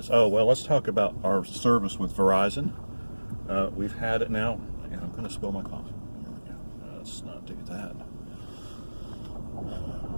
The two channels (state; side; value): inverted; both; correlation -1.00